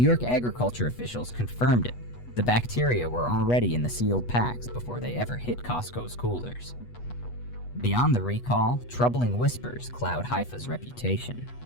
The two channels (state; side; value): late; right; 8.2 ms